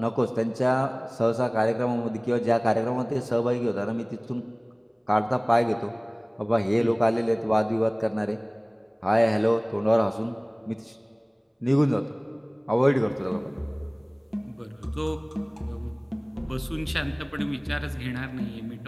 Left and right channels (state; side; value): identical; both; correlation 1.00